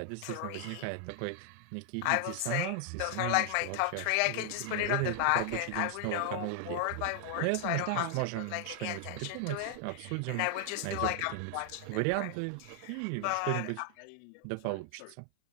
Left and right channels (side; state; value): both; different; correlation 0.00